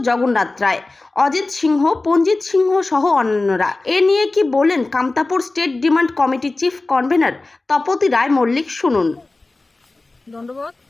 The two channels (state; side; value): quieter; right; 3.2 dB